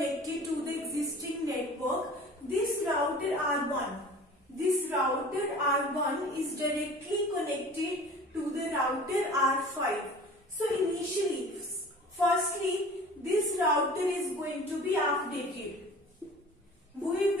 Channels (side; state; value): both; normal; correlation 0.43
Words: to the existing network, this router R1 is directly connected to the router R5. So initially, firstly, this router is going to be updated. We